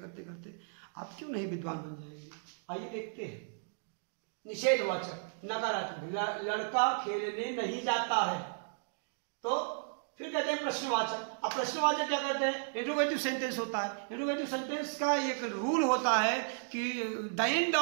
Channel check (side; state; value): left; silent; digital silence